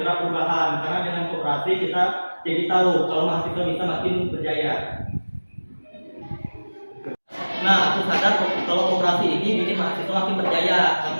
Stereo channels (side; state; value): both; inverted; correlation -1.00